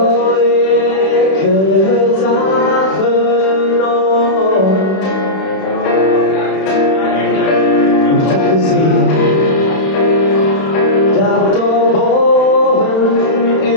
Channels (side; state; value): right; late; 31 ms